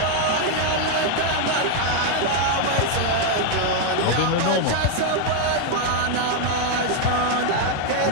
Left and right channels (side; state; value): both; different; correlation 0.00